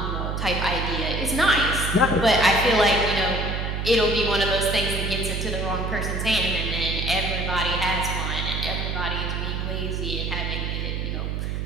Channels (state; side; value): noise; right; hum, 2 dB below the sound